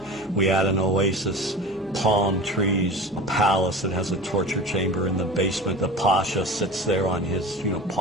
We add an oasis, palm trees, a palace that has a torture chamber in the basement. The pasha sits there on his,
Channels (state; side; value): normal; both; correlation 0.33